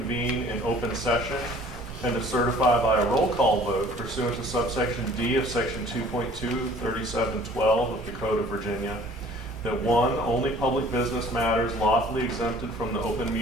in open session and to certify by a roll call vote pursuant to subsection D of section 2.23712 of the Code of Virginia that one, only public business matters lawfully exempted from the open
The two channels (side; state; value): both; normal; correlation 0.51